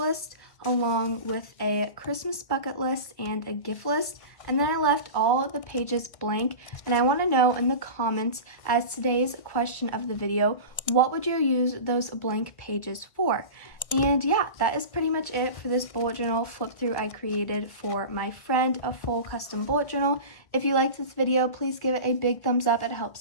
along with a Christmas bucket list and a gift list. And then I left all of the pages blank, and I want to know in the comments, as today's question of the video, what would you use those blank pages for? And yeah, that is pretty much it for this bullet journal flip through I created for my friend, a full custom bullet journal. If you liked this video, please give it a big thumbs up. It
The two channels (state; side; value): late; right; 1.6 ms